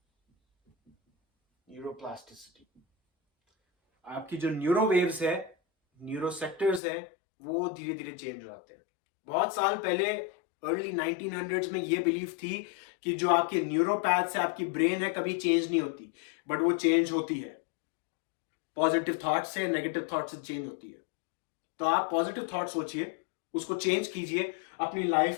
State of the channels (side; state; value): right; drops out; at 6.8 s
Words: न्यूरोप्लास्टिसिटी, आपकी जो न्यूरो वेव्स है, न्यूरो सेक्टर्स है, वो धीरे धीरे चेंज हो जाते हैं। बहुत साल पहले अर्ली 1900s में ये बिलीफ थी कि जो आपके न्यूरोपैथ्स है, आपकी ब्रेन है, कभी चेंज नहीं होती। बट वो चेंज होती है। पॉजिटिव थॉट से, नेगेटिव थॉट से चेंज होती है। तो आप पॉजिटिव थॉट सोचिए, उसको चेंज कीजिए, अपनी